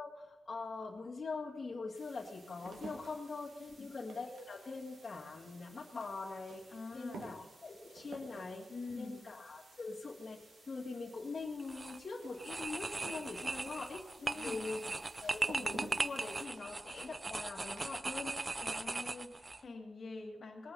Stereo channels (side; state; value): both; normal; correlation 0.91